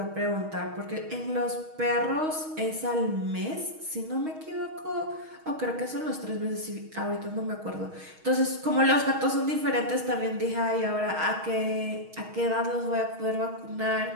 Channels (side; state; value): left; late; 6.4 ms